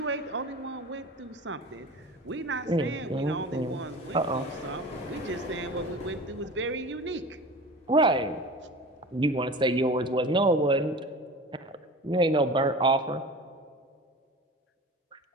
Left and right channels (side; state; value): both; normal; correlation 0.36